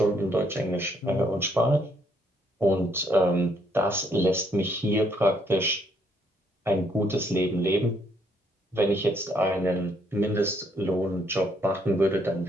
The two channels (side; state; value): both; normal; correlation 0.70